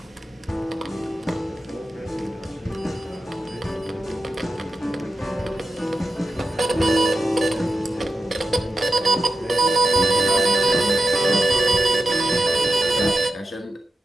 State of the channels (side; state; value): both; normal; correlation 0.90